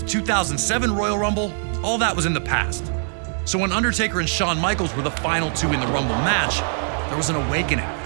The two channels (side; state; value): left; silent; digital silence